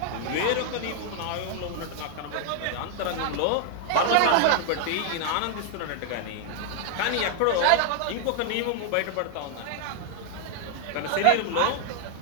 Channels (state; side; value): different; both; correlation 0.00